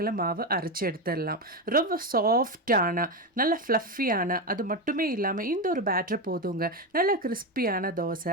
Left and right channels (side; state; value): both; normal; correlation 0.13